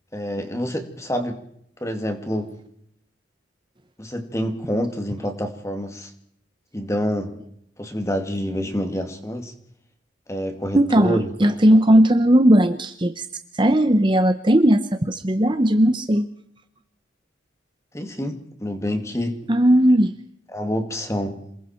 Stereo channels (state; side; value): normal; both; correlation 0.84